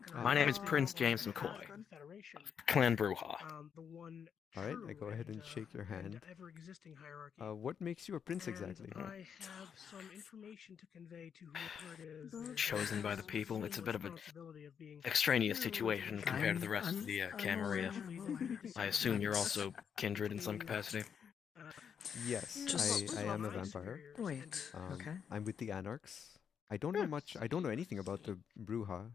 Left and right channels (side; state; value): right; quieter; 7.5 dB